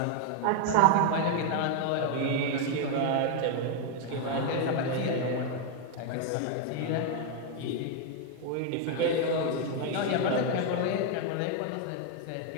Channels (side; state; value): both; different; correlation 0.01